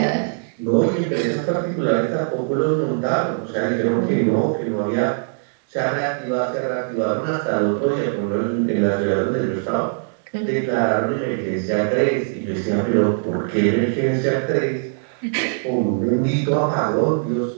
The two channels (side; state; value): left; silent; digital silence